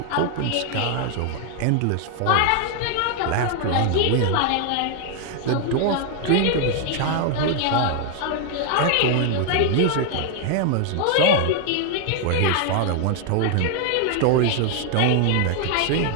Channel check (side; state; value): both; different; correlation 0.00